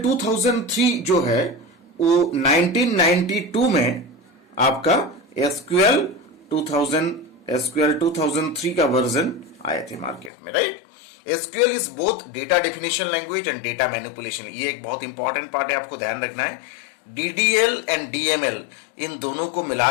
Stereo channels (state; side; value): drops out; right; at 10.3 s